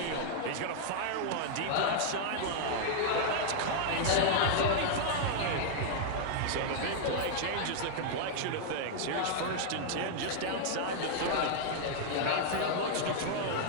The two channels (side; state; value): both; different; correlation -0.01